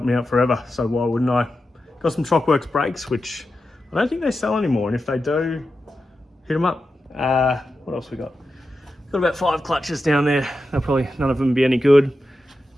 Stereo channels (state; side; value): normal; both; correlation 0.90